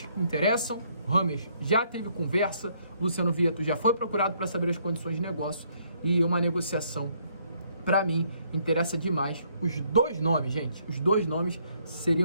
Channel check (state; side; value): inverted; both; correlation -0.68